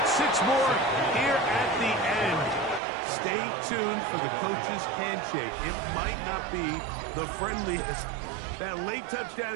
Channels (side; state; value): left; drops out; at 2.8 s